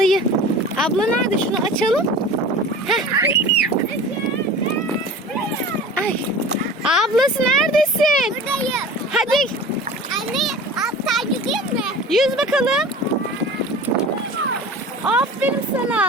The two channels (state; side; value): normal; both; correlation 0.38